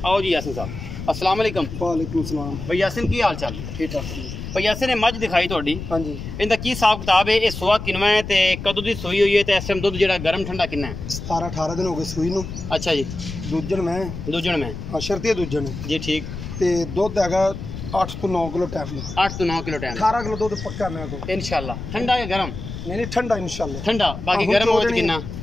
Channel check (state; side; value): noise; left; rumble, 9 dB below the sound